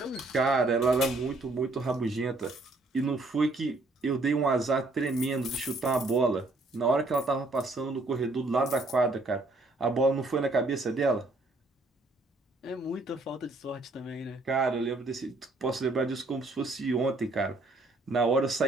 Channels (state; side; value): quieter; left; 3.0 dB